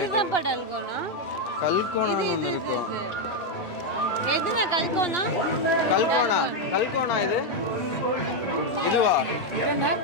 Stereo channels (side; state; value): right; late; 3.2 ms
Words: படல்கோனா. கல்கோனா ஒன்னு இருக்கும். எதுனா கல்கோனா? கல்கோனா இது. இதுவா?